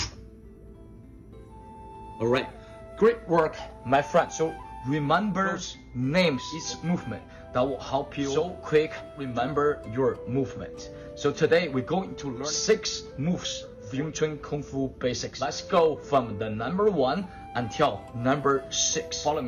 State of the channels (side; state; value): both; identical; correlation 1.00